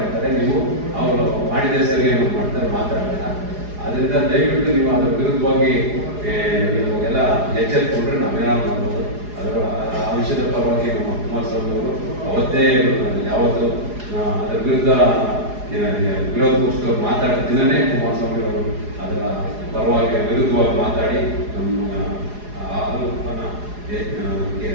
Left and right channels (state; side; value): late; left; 4.8 ms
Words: ನೀವು ಅವರು ಮಾಡಿದೆ ಸರಿ ಏನೋ ಮಾಡ್ತಾರೆ ಮಾತಾಡೋಣ. ಅದರಿಂದ ದಯವಿಟ್ಟು ನೀವು ಅದರ ವಿರುದ್ಧವಾಗಿ ನೀವು ಎಲ್ಲ ಎಚ್ಚರಿಕೊಂಡ್ರೆ ನಾವೇನಾದ್ರು ಮಾಡ್ಬೋದು. ಆ ವಿಷಯದ ಪರವಾಗಿ ನಮ್ಮ ಕುಮಾರಸ್ವಾಮಿ ಅವರು ಅವತ್ತೇ ಯಾವತ್ತು ಅದರ ವಿರುದ್ಧ ವಿರೋಧ ಪಕ್ಷದವ್ರು ಮಾತಾಡೋ ದಿನನೇ ಕುಮಾರಸ್ವಾಮಿ ಅವರು ಅದರ ಪರವಾಗಿ ವಿರುದ್ಧವಾಗಿ ಮಾತಾಡಿ ನಮ್ಮ